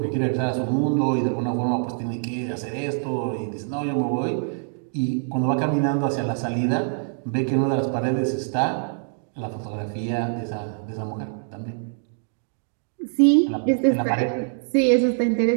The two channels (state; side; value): silent; left; digital silence